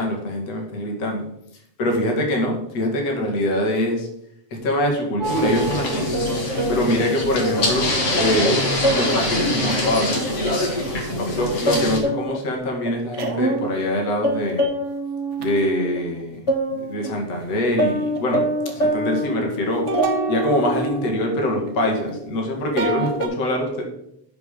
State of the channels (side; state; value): right; late; 7.7 ms